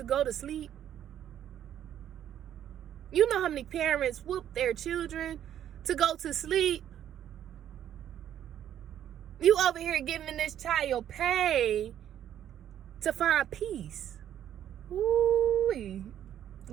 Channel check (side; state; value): left; quieter; 10.6 dB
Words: go to sleep? You know how many parents whoop their children to go to sleep? You over here giving this child pain to find peace. Ooh,